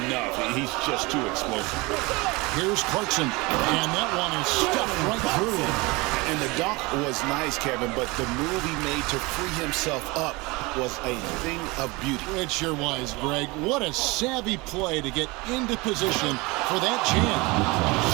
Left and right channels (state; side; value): quieter; left; 24.4 dB